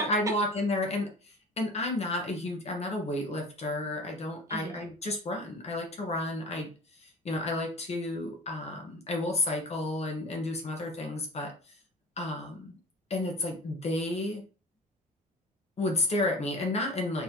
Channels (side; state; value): both; normal; correlation 0.38